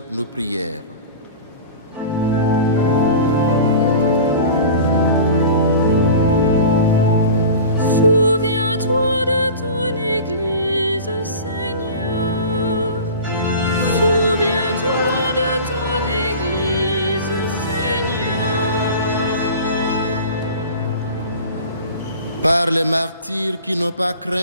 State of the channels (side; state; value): both; inverted; correlation -0.36